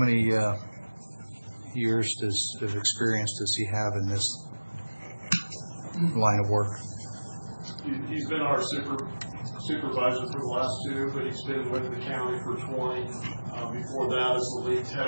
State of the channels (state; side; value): inverted; both; correlation -1.00